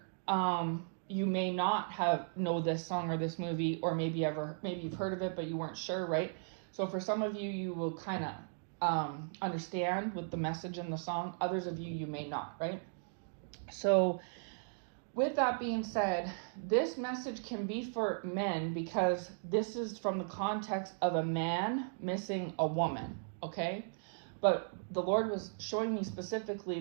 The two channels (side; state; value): left; silent; digital silence